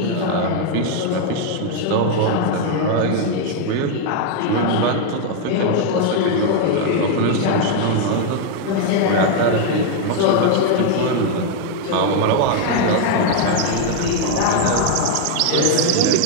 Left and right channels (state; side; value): different; both; correlation 0.00